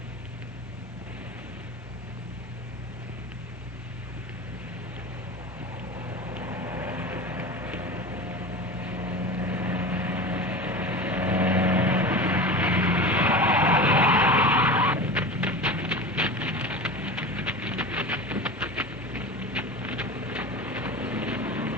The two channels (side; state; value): both; normal; correlation 0.30